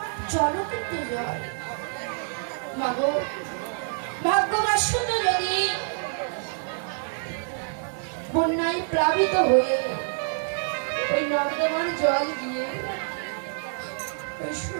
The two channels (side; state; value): left; silent; digital silence